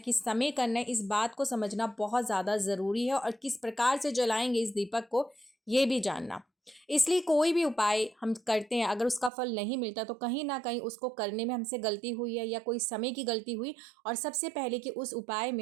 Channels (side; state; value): left; drops out; at 9.3 s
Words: समय करना है, इस बात को समझना बहुत ज़्यादा ज़रूरी है। और किस प्रकार से जलाएंगे इस दीपक को, ये भी जानना। इसलिए कोई भी उपाय हम करते हैं, अगर उसका फल नहीं मिलता तो कहीं ना कहीं उसको करने में हमसे गलती हुई है या कोई समय की गलती हुई। और सबसे पहले कि उस उपाय